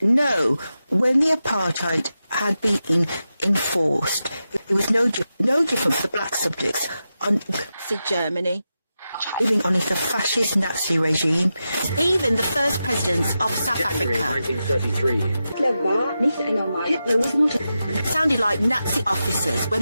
So, when the apartheid had been enforced, it was no different for the black subjects on Nazi Germany, living under the fascist Nazi regime. Even the first presidents of South Africa 1933. Hitler was not sounded like Nazi officers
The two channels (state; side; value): inverted; both; correlation -0.90